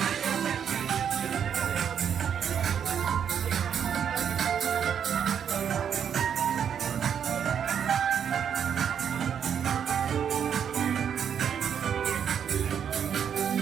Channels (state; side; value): quieter; left; 8.2 dB